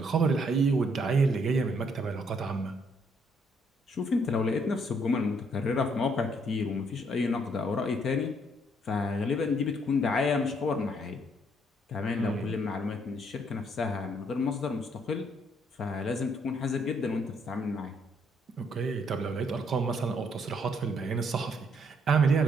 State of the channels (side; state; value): both; normal; correlation 0.69